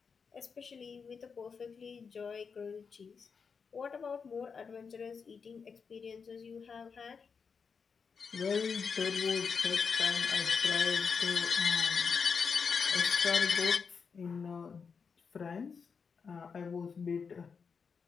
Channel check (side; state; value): right; quieter; 5.7 dB